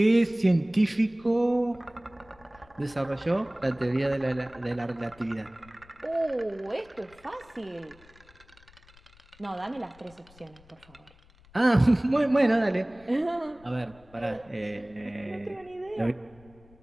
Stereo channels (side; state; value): left; noise; rumble, 26 dB below the sound